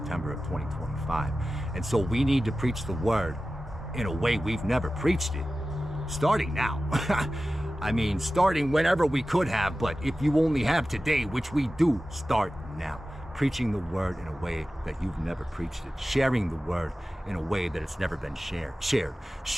of 2025. And so we need to preach the word in a way we've never preached it, starting now. I mean, starting whenever we could have, but if you only have today, which we do, start now. preaching the word in a way that you've never preached it, sharing the word in a way that it's never been shared,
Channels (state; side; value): normal; both; correlation 0.95